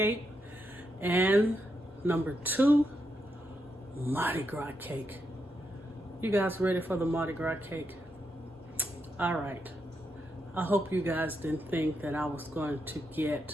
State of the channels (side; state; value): both; normal; correlation 0.82